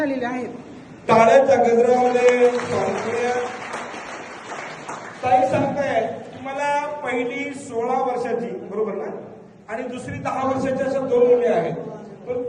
आहेत. टाळ्याच्या गजरामध्ये ताई सांगताय मला पहिली 16 वर्षाची बरोबर ना आणि दुसरी 10 वर्षाच्या अशा 2 मुली आहेत. पण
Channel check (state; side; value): identical; both; correlation 1.00